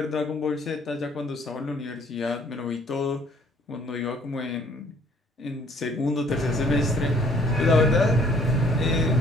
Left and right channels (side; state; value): both; normal; correlation 0.58